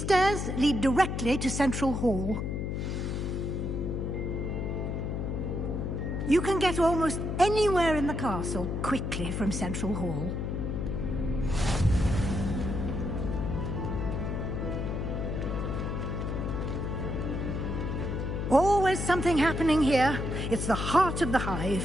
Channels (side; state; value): left; noise; hum, 2 dB below the sound